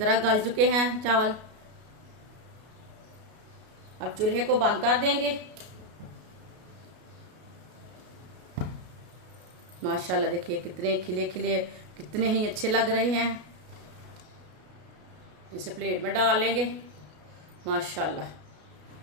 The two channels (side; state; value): left; late; 33 ms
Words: गल चुके हैं चावल। अब चूल्हे को बंद कर देंगे। माशाल्लाह देखिए कितने खिले खिले, कितने ही अच्छे लग रहे हैं। इसे प्लेट में डाल लेंगे। माशाल्लाह,